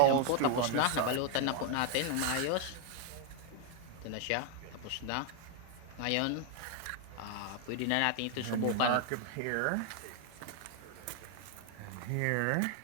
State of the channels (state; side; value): different; both; correlation 0.00